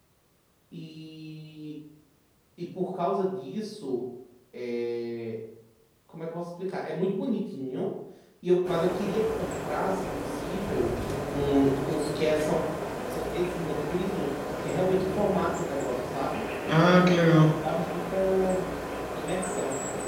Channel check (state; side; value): identical; both; correlation 1.00